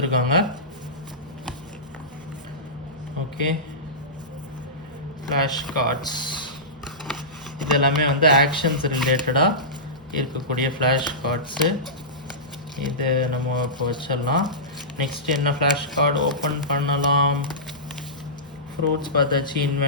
Okay, flash cards இதெல்லாமே வந்து actions ரிலேட்டடாக இருக்கக்கூடிய flash cards. இது நம்ம இப்போ வச்சிடலாம். நெக்ஸ்ட் என்ன ஃப்ளாஷ் கார்டு ஓப்பன் பண்ணலாம்? ஃப்ரூட்ஸ் பார்த்தாச்சு.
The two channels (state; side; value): normal; both; correlation -0.19